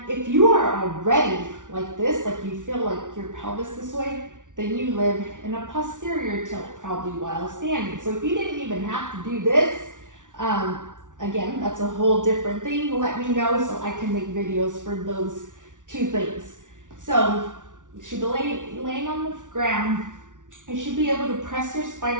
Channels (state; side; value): late; left; 0.87 ms